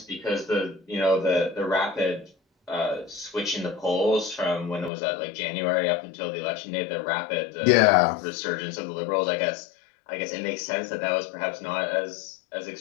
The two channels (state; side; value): drops out; right; at 4.9 s